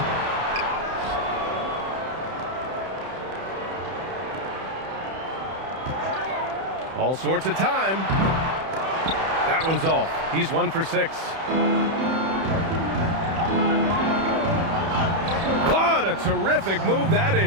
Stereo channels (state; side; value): late; left; 31 ms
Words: All sorts of time. That one's off. He's 1 for 6. What a terrific move that